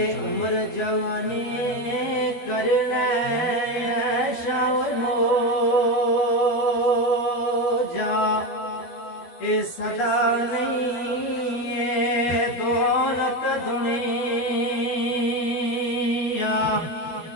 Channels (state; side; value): late; right; 12 ms